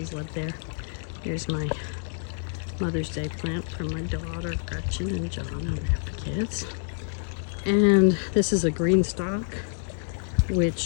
lived there. Here's my Mother's Day plant from my daughter Gretchen and John and the kids. And this is a green stock,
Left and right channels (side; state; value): right; silent; digital silence